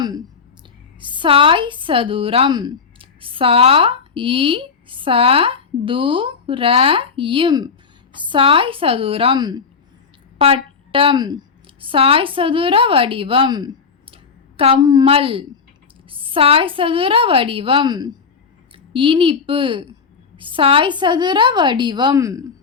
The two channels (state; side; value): quieter; right; 5.5 dB